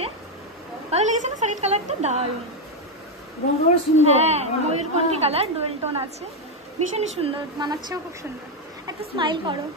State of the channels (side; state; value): both; normal; correlation 0.05